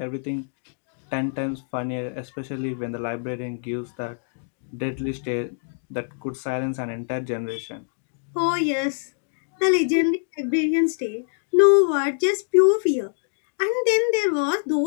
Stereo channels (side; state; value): right; silent; digital silence